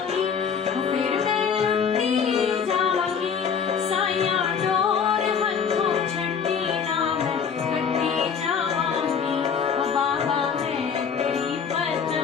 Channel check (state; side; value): quieter; right; 6.7 dB